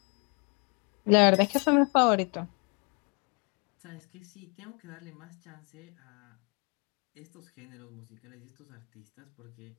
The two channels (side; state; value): right; quieter; 34.0 dB